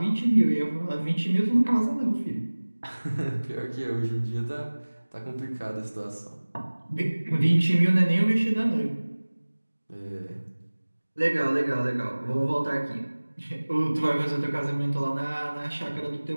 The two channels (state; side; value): inverted; both; correlation -1.00